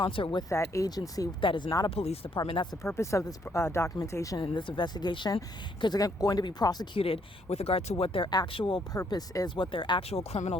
with that agency that is not a police department. That's the purpose of this documentation and this investigation, because they're going to be prosecuted with regard to what their actual purpose is, what their actual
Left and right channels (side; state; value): both; normal; correlation 0.70